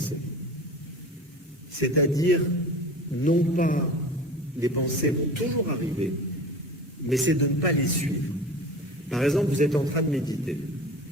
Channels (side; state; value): both; normal; correlation 0.36